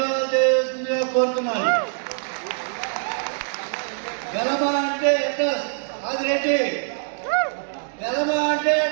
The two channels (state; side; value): silent; left; digital silence